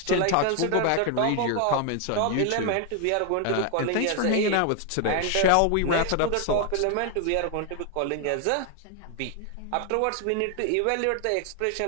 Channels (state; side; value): different; both; correlation 0.00